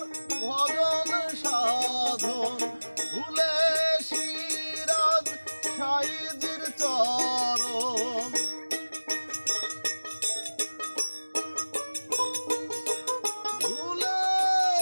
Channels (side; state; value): both; inverted; correlation -1.00